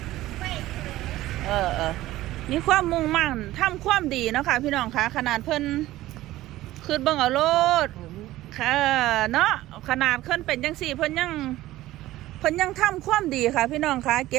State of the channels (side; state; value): left; quieter; 16.0 dB